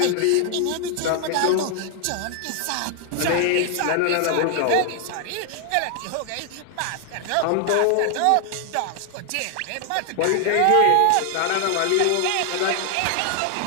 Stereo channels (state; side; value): different; both; correlation 0.00